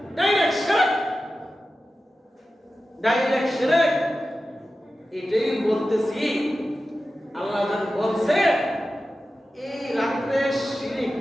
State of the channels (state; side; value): normal; both; correlation 0.93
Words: ডাইরেক্ট শিরক এটাই বলতেছি আল্লাহ যখন বলছে এই রাত্রে শিরিক